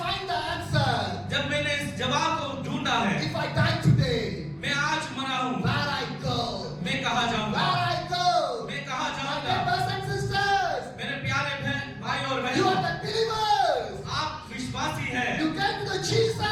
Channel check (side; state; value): both; identical; correlation 1.00